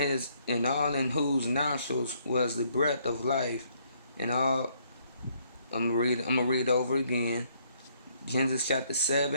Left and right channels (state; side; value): inverted; both; correlation -0.68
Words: whose nostrils was the breath of life, and all. I'm gonna read over again. Genesis chapter